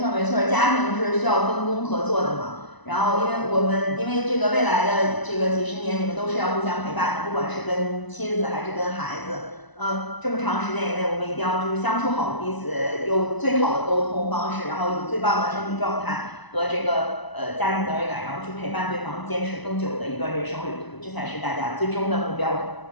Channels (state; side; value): late; right; 1.0 ms